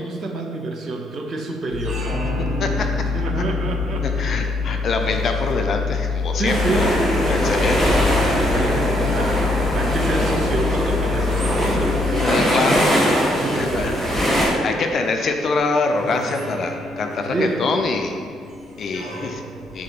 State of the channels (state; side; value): normal; both; correlation 0.72